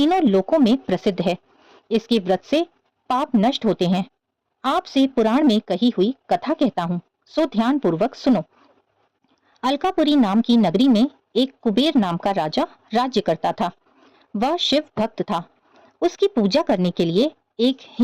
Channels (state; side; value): identical; both; correlation 1.00